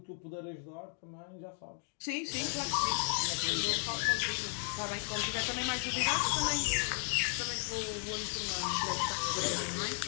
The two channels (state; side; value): silent; right; 55 dB below the other